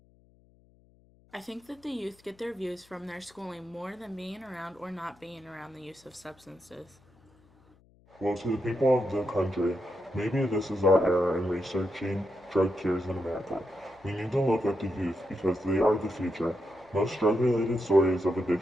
I think that the youth get their views from their schooling more than being around or not being around the use of substances. Well, to the people of the country, maybe this is our era in researching drug cures in America. We need to look at the youth because they are the future. Most drug-related stories of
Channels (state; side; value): noise; left; hum, 30 dB below the sound